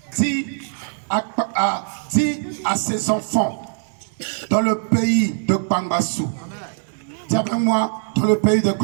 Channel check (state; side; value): silent; left; digital silence